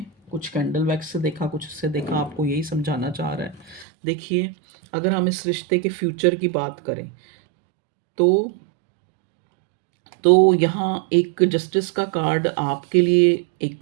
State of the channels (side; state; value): left; drops out; at 3.9 s